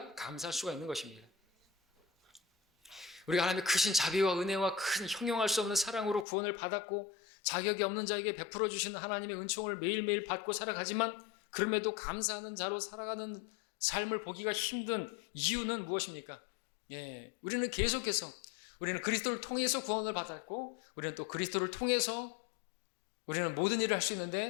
감사할 수가 있는 것입니다. 우리가 하나님의 크신 자비와 은혜와 큰 형용할 수 없는 사랑으로 구원을 받았고 자격이 없는 자에게 베풀어 주시는 하나님의 은총을 매일매일 받고 살아가지만 그럼에도 감사하는 자로 살아가는 삶을 보기가 힘든 이유는 무엇입니까? 우리는 계속해서 우리는 그리스도를 통해서 구원을 받았고 우리는 또 그리스도를 통해서 우리는 모든 일을 할 수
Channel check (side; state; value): right; drops out; at 6.2 s